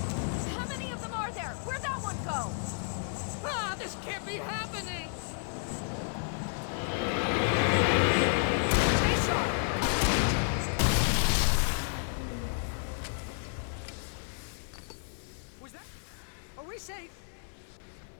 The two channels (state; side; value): silent; right; digital silence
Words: How many of them are there? Where'd that one go? Ah, this can't be happening! Was that it? Are we safe?